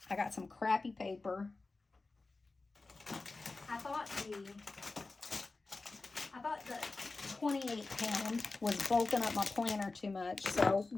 I got some crappy paper. I thought the 28 pound was bulking up my planner too much, so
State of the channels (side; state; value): right; quieter; 3.6 dB